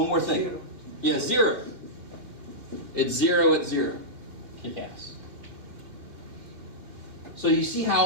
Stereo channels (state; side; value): late; left; 2.3 ms